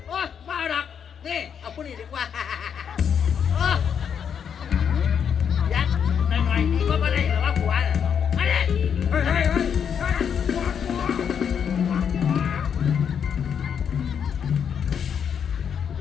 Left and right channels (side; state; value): right; quieter; 7.7 dB